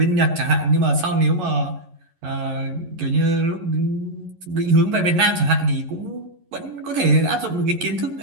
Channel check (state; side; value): late; left; 11 ms